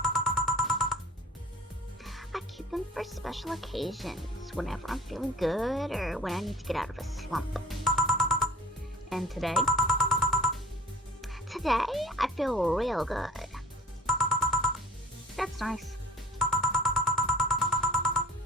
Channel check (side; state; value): both; normal; correlation 0.45